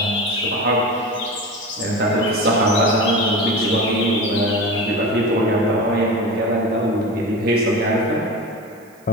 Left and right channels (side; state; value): right; noise; hiss, 30 dB below the sound